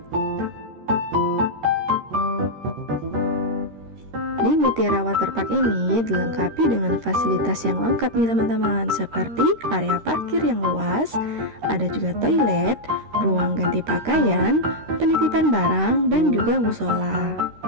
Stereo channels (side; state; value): left; late; 13 ms